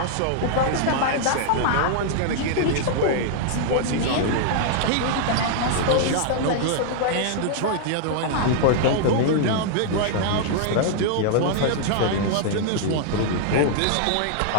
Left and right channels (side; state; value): both; different; correlation -0.01